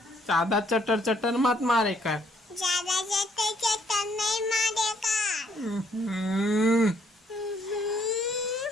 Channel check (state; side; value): normal; both; correlation 0.67